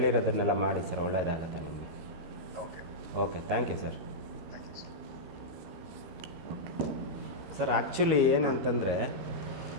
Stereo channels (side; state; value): left; late; 13 ms